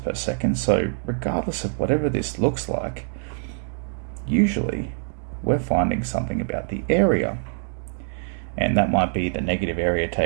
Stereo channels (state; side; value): silent; left; 62 dB below the other